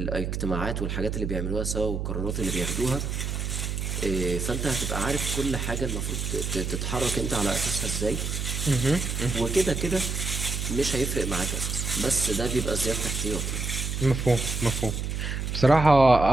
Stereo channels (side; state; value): right; noise; hum, 3 dB below the sound